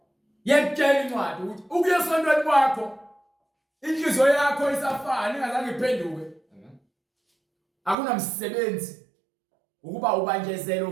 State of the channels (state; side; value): drops out; left; at 8.0 s